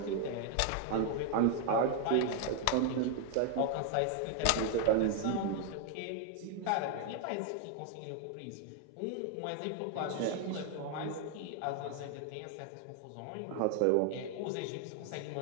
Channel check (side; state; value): both; different; correlation 0.00